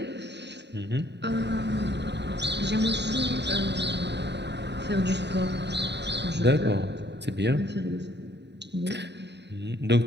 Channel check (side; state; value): left; late; 0.50 ms